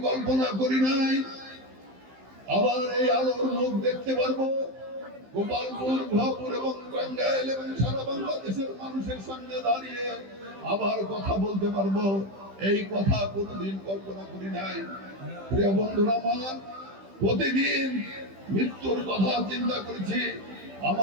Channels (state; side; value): late; left; 15 ms